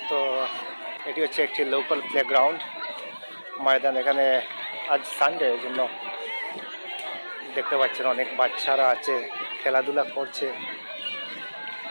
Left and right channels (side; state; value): both; inverted; correlation -1.00